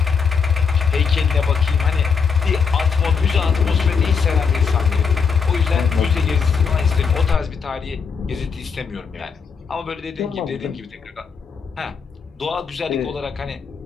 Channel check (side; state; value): right; quieter; 5.8 dB